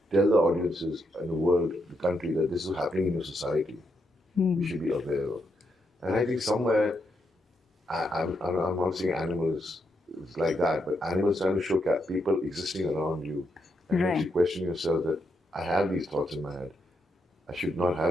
tell the audiences in the world, the country, that this is happening in your society. We should be aware of. And I think somewhere, I'm not saying animals is like that, but animals trying to show people existing around you and Right. makes you question yourself that I have these thoughts in my head. I should not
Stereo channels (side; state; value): both; normal; correlation 0.80